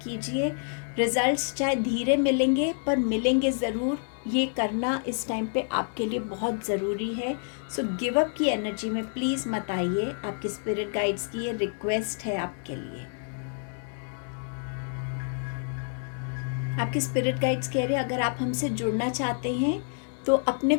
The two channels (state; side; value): silent; right; 59 dB below the other